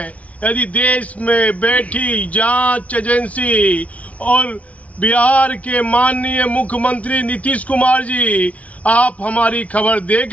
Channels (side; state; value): right; late; 0.067 ms